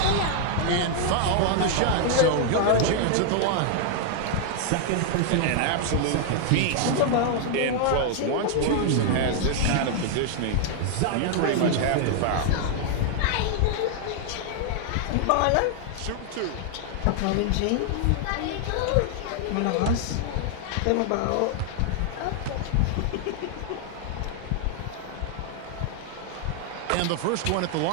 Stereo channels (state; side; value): different; both; correlation 0.00